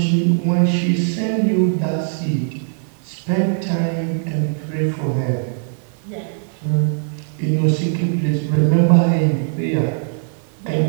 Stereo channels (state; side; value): silent; left; digital silence